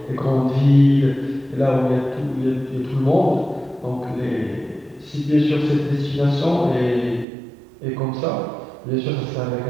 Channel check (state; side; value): drops out; left; at 7.2 s